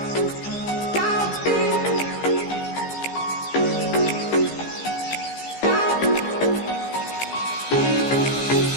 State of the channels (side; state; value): right; late; 15 ms